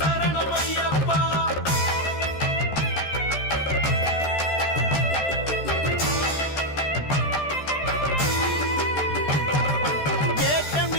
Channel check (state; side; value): late; right; 13 ms